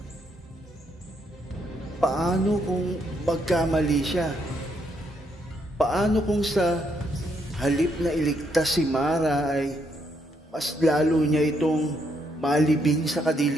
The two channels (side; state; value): both; normal; correlation 0.75